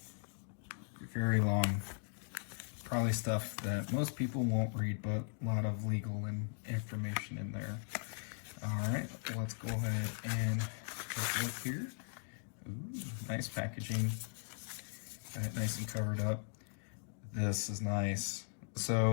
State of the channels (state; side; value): silent; right; 52 dB below the other